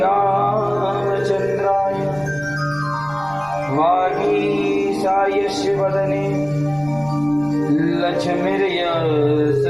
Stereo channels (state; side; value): noise; right; rumble, 21 dB below the sound